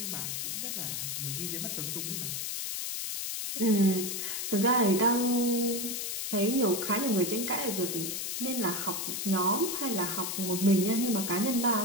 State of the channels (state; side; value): noise; left; hiss, 3 dB below the sound